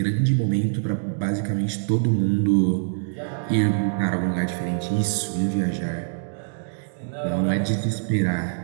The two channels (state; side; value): silent; left; digital silence